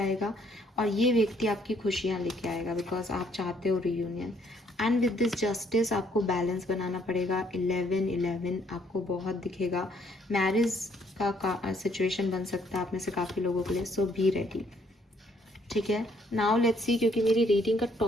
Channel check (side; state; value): both; normal; correlation 0.67